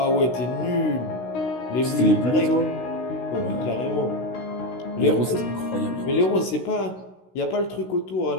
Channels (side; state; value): right; late; 16 ms